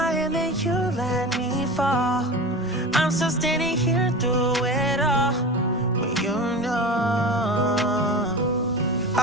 hand and you let me fall. I'm still standing here through it all, but you know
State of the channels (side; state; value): both; normal; correlation 0.30